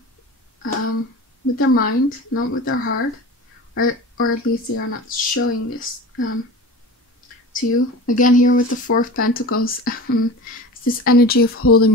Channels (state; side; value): normal; both; correlation 0.34